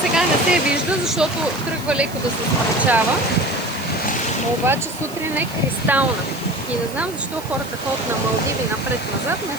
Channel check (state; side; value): noise; right; hiss, 17 dB below the sound